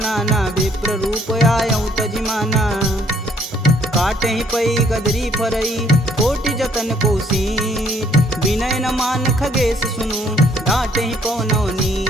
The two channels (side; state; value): both; normal; correlation 0.64